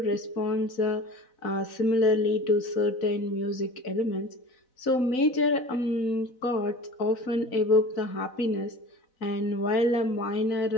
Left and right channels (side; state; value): right; late; 4.0 ms